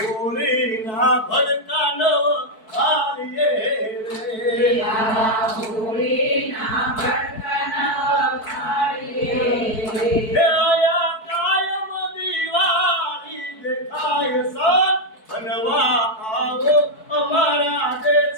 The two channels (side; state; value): right; late; 4.6 ms